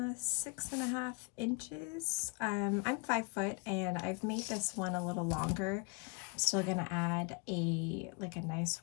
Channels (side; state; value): right; quieter; 33.5 dB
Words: inches. I'm 5 foot and I've made this one a little longer. I'm still gonna add a nice